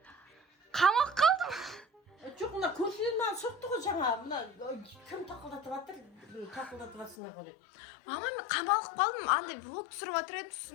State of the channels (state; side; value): drops out; right; at 7.2 s